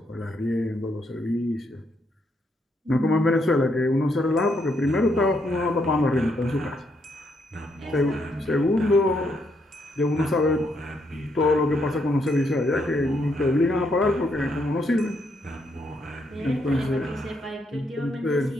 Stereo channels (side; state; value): both; normal; correlation 0.76